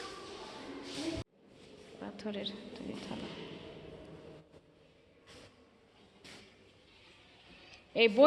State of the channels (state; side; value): identical; both; correlation 1.00